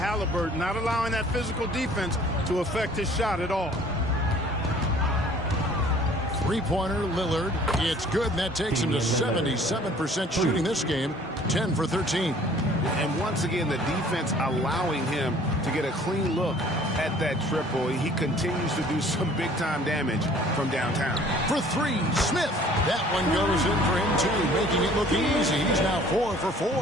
not allowing that physical defense to affect his shot at all. Three-pointer, Lillard. It's good, and that takes him to 77% shooting this game, 10 for 13. And once again, the defense allowing him to get a clean look at that triple. He continues to do some big-time damage from downtown. For three, Smith. That one goes in for him, too, making it look easy. He's now 4 for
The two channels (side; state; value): both; normal; correlation 0.53